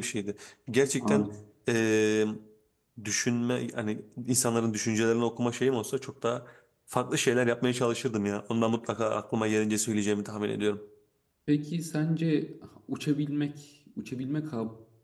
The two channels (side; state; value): both; identical; correlation 1.00